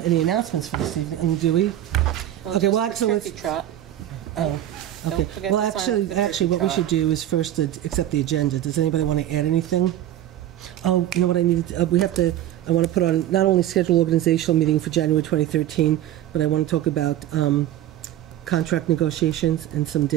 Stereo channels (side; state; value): left; quieter; 12.4 dB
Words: any announcements for this evening, do we? Well, Okay, well, just the actually, turkey trot. Oh, Don't okay. forget Well, to sign up for the actually, turkey what we trot. should do is first accept the agenda. Does anybody want to add anything? Oh, you know what I need? I want to put on not only schedule organizational meeting for January 2013, but I want to talk about contract negotiations and some